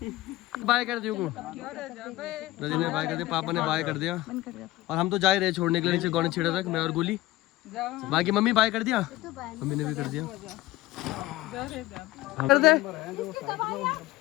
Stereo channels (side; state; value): right; quieter; 17.5 dB